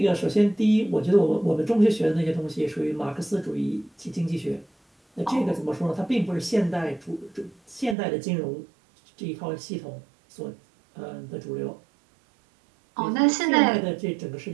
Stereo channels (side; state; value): left; drops out; at 8.0 s